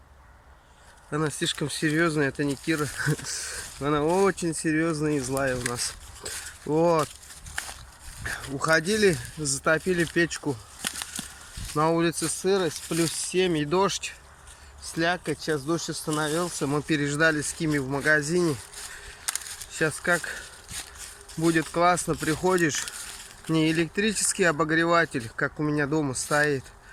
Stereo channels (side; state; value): both; identical; correlation 1.00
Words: Она слишком серьезная, это не Кира. Она очень серьезная и злая у нас. Вот. Уходили, затопили печку. На улице сырость, плюс 7 и дождь. Слякоть, сейчас дождь остановился. Мы переждали с Кими в магазине. Сейчас как будет классно, приходишь. Не электрический обогреватель, как у меня дома стоит,